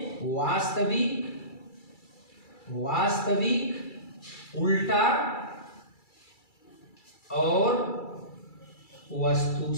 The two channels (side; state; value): right; late; 2.3 ms